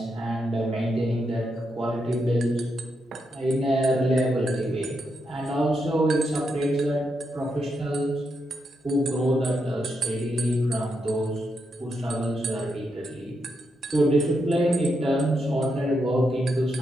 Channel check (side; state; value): both; normal; correlation 0.83